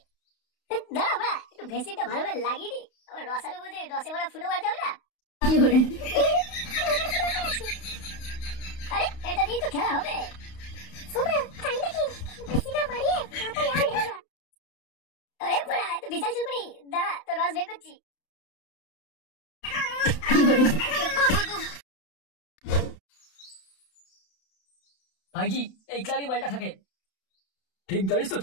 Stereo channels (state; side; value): late; right; 32 ms